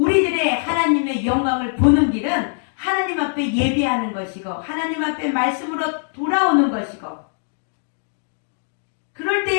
하나님의 영광을 보는 길은 하나님 앞에 예배하는 것이고 하나님 앞에 말씀으로 돌아오는 것이고 그럴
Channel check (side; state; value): right; silent; 65 dB below the other